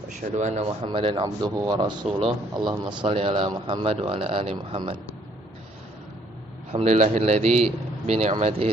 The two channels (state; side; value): normal; both; correlation 0.65